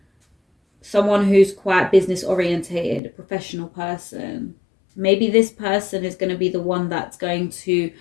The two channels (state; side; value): drops out; right; at 3.0 s